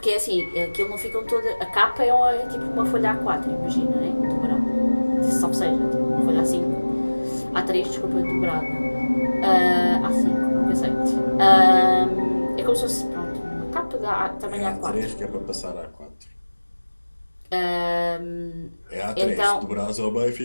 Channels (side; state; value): both; inverted; correlation -1.00